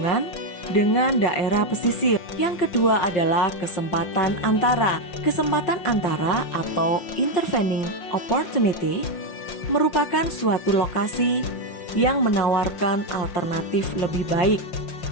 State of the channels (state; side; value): late; right; 5.7 ms